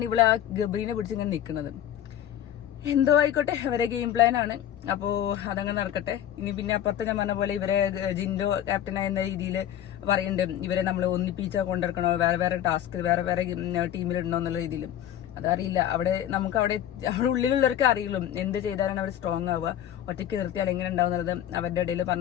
ഇവള് ആ ഗബ്രീനെ പിടിച്ച് ഇങ്ങനെ നിൽക്കുന്നത്. എന്തോ ആയിക്കോട്ടെ, അവരെ ഗെയിം പ്ലാൻ ആണ്. അപ്പോ അതങ്ങനെ നടക്കട്ടെ. ഇനി പിന്നെ അപ്പുറത്ത് ഞാൻ പറഞ്ഞ പോലെ ഇവരെ ജിൻഡോ ക്യാപ്റ്റനായ എന്ന രീതിയിൽ പറയുന്നുണ്ട്, ഇവരെ നമ്മൾ ഒന്നിപ്പിച്ച കൊണ്ടിരിക്കണോ, വേറെ ടാസ്ക് വേറെ ടീമിലിടണോ എന്നുള്ള രീതിയിലും. അതറിയില്ല. നമുക്ക് അവിടെ ഉള്ളിലുള്ളവർക്ക് അറിയുള്ളൂ എന്ത് ചെയ്താലാണ് അവർ സ്ട്രോങ് ആവുക, ഒറ്റയ്ക്ക് നിർത്തിയാൽ എങ്ങനെ ഉണ്ടാവുന്നത്. അവരുടെ ഇടയിൽ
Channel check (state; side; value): quieter; right; 11.0 dB